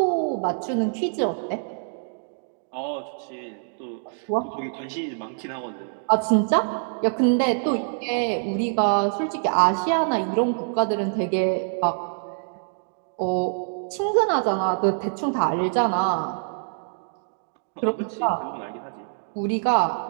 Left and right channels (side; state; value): left; silent; digital silence